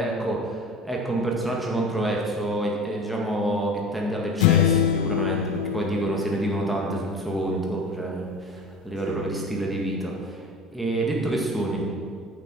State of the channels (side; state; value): both; normal; correlation 0.35